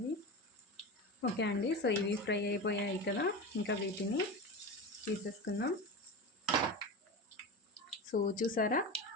ఓకే అండి. సో ఇవి ఫ్రై అయిపోయాయి కదా, ఇంకా వీటిని తీసేసుకుందాం. సో చూసారా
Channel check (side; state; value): both; normal; correlation 0.25